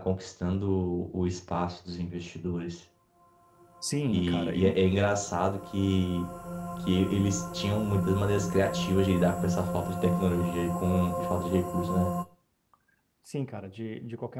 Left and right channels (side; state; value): both; identical; correlation 1.00